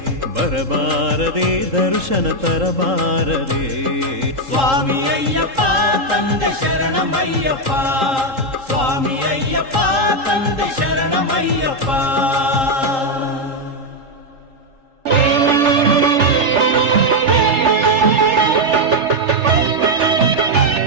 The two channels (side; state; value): left; late; 3.7 ms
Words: ಬರಬಾರದೆ ದರ್ಶನ ತರಬಾರದೆ. ಸ್ವಾಮಿ ಅಯ್ಯಪ್ಪ ತಂದೆ ಶರಣಮಯ್ಯಪ್ಪ, ಸ್ವಾಮಿ ಅಯ್ಯಪ್ಪ ತಂದೆ ಶರಣಮಯ್ಯಪ್ಪ.